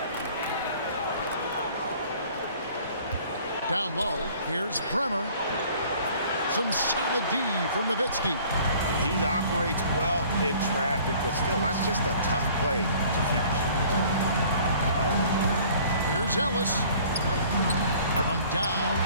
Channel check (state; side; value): inverted; both; correlation -0.52